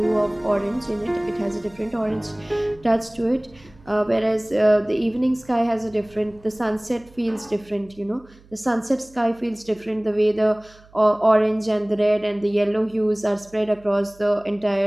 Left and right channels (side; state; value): right; noise; hum, 26 dB below the sound